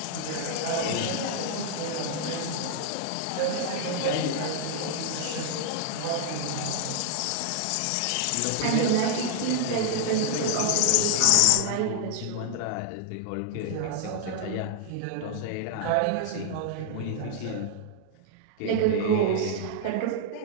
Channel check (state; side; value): different; both; correlation -0.01